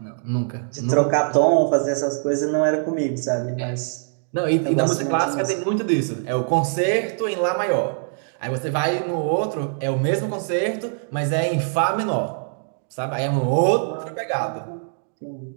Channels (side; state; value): left; silent; digital silence